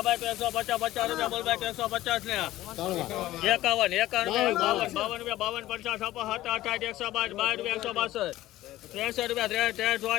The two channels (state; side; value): quieter; right; 15.6 dB